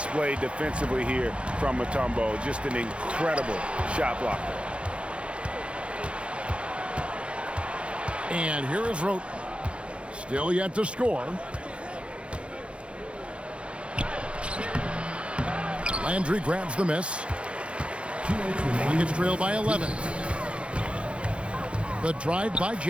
defensively here from Mutombo. Just an incredible shot blocker. And here is Roten. Still yet to score. Landry grabs the miss. Rockets trail by 11. The drive by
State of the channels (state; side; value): late; left; 0.059 ms